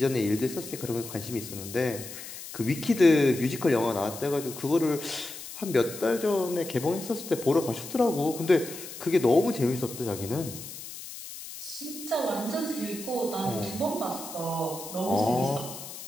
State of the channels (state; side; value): noise; left; hiss, 12 dB below the sound